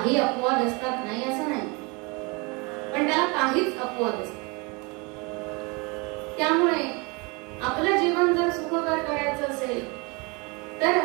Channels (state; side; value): quieter; left; 29.0 dB